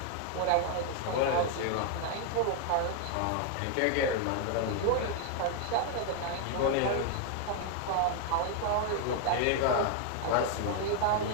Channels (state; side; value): different; both; correlation 0.00